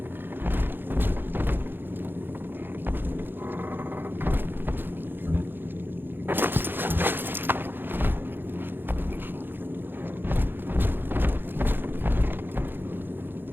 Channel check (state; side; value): late; left; 0.099 ms